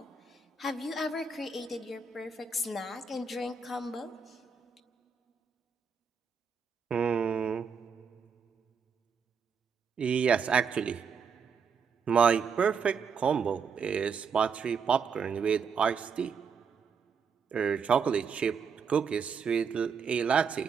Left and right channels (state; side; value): quieter; left; 5.8 dB